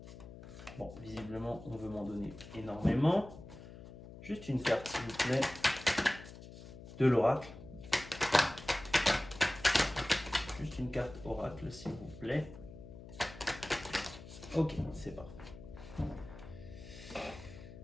Bon, visiblement, on veut m'en donner énormément. Juste une carte, s'il vous plaît, de l'oracle. Juste une carte oracle, s'il vous plaît. Ok, c'est parfait.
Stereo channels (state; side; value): noise; left; hum, 15 dB below the sound